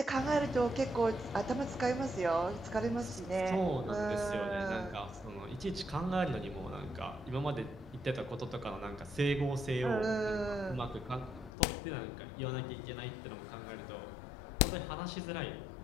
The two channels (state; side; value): drops out; right; at 11.5 s